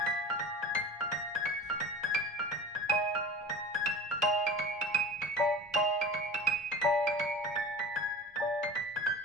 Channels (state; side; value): normal; both; correlation 0.37